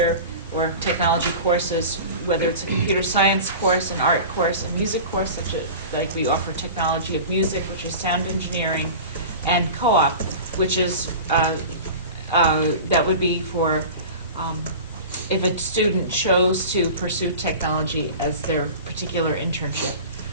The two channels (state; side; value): inverted; both; correlation -0.35